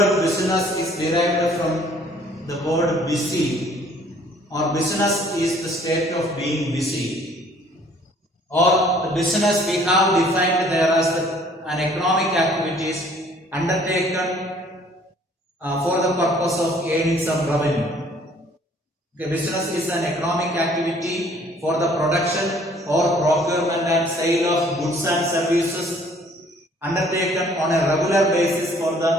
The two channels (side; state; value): both; normal; correlation 0.57